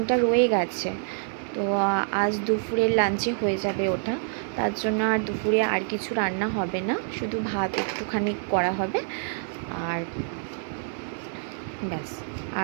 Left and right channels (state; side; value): silent; left; digital silence